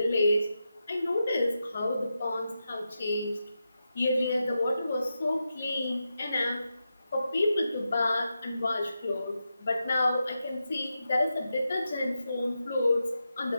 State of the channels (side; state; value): both; inverted; correlation -0.88